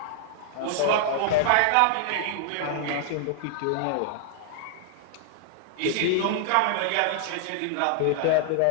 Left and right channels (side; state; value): both; different; correlation -0.01